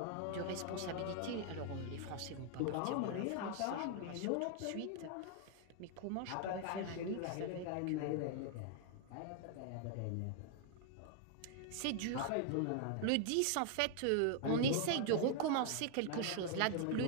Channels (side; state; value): both; different; correlation 0.00